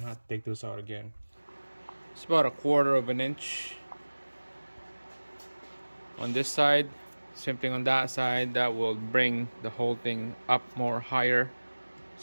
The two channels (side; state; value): both; inverted; correlation -1.00